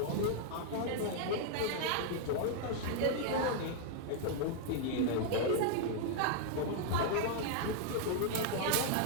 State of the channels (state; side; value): different; both; correlation 0.00